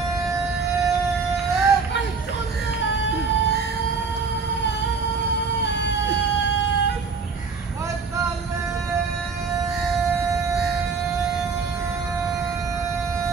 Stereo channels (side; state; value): left; quieter; 4.9 dB